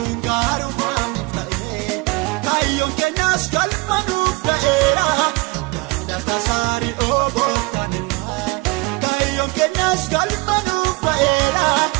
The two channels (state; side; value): quieter; left; 25.2 dB